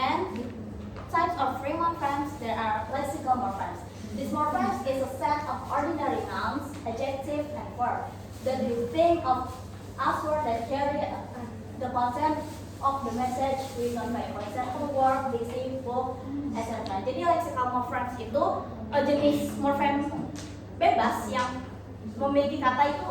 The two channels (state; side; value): identical; both; correlation 1.00